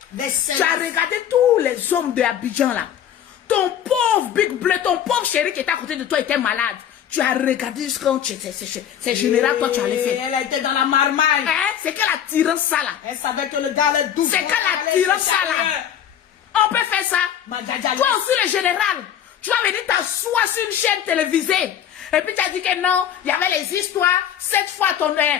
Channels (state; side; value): quieter; right; 9.7 dB